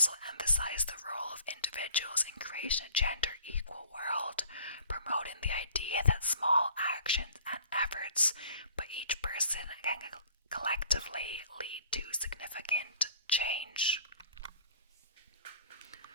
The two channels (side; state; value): both; inverted; correlation -0.51